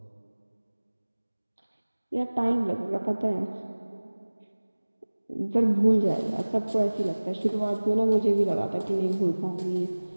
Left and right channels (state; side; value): inverted; both; correlation -1.00